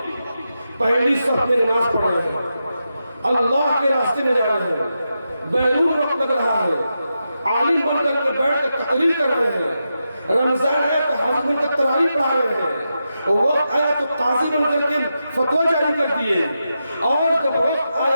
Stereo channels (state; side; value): inverted; both; correlation -0.88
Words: پہلی صف میں نماز پڑھ رہے ہیں، اللہ کے راستے میں جا رہے ہیں، بیرون وقت لگ رہا ہے، عالم بن کر کے بیٹھ کے تقریر کر رہے ہیں، رمضان آیا تو حج بن کر تراویح پڑھا رہے ہیں، وقت آیا تو قاضی بن کر کے فتویٰ جاری کر دیے، اور جب وقت